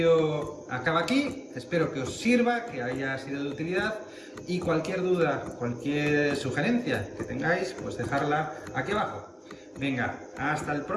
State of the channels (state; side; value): identical; both; correlation 1.00